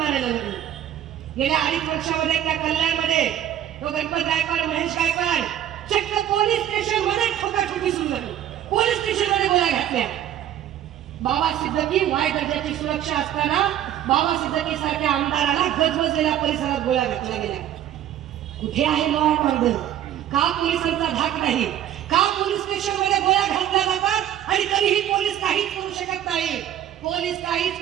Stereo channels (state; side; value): quieter; left; 11.3 dB